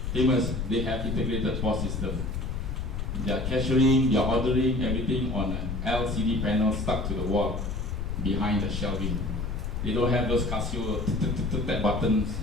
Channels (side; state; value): left; noise; rumble, 3 dB below the sound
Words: They have integrated POS system. They are cashiering, they are ordering everything on an LCD panel stuck to the wall behind the shelving. They don't have those Casio tap button